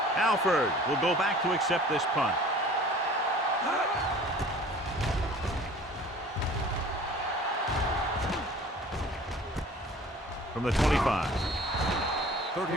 Alford will go back to accept this punt. From the 25.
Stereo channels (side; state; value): both; normal; correlation 0.47